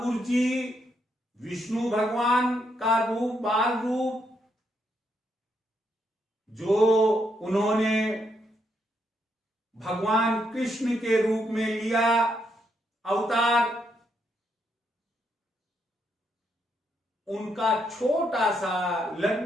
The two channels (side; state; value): both; normal; correlation 0.78